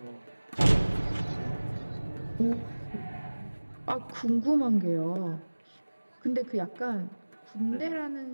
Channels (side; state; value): both; inverted; correlation -1.00